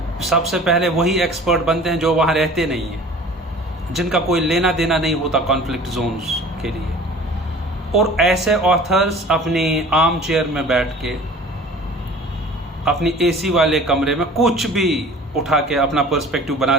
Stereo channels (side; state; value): both; normal; correlation 0.45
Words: सबसे पहले वही एक्सपर्ट बनते हैं जो वहाँ रहते नहीं हैं, जिनका कोई लेना देना नहीं होता कॉन्फ्लिक्ट जोन्स के लिए। और ऐसे ऑथर्स अपनी आर्म चेयर में बैठ के अपनी AC वाले कमरे में कुछ भी उठा के अपना पर्सपेक्टिव बना